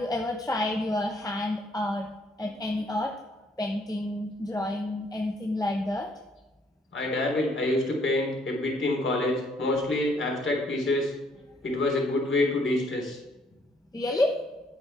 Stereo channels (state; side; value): normal; both; correlation 0.67